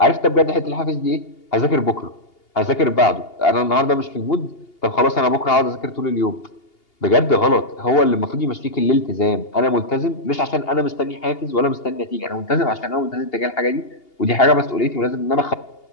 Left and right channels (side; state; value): right; late; 2.8 ms